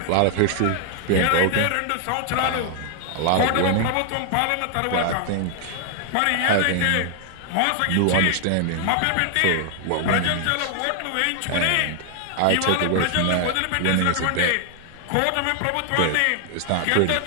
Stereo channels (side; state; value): both; different; correlation 0.00